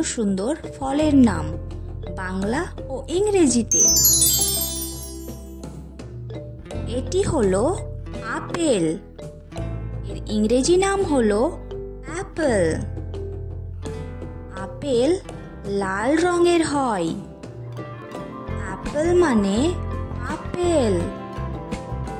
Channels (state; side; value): identical; both; correlation 1.00